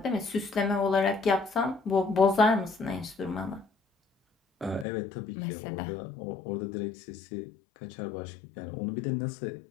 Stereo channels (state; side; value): drops out; right; at 4.9 s